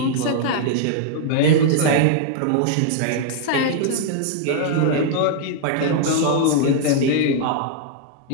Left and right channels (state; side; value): different; both; correlation -0.01